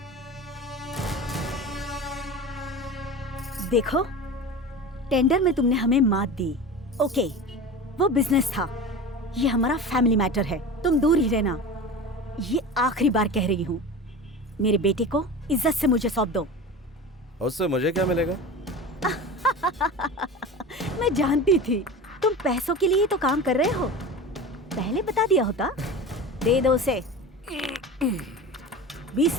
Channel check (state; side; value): normal; both; correlation 0.32